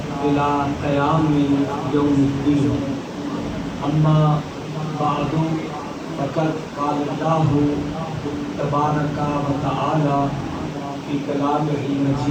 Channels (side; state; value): both; identical; correlation 1.00